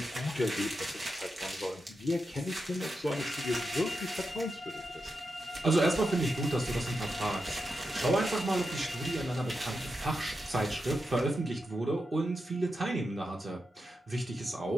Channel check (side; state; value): both; normal; correlation 0.88